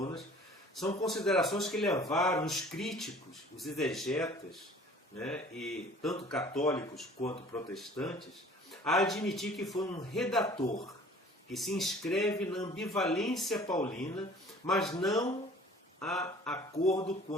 são considerações que levaram os críticos, os exegetas, e tanto católicos quanto protestantes, a admitir que foi um redator que se inscreve na ambivalência paulina, mas não há acordo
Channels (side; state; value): both; normal; correlation 0.49